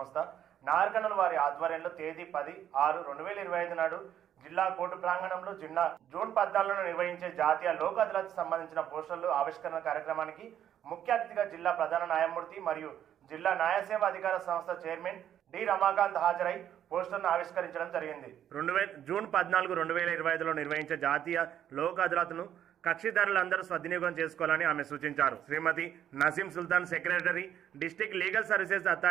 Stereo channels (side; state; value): left; quieter; 10.3 dB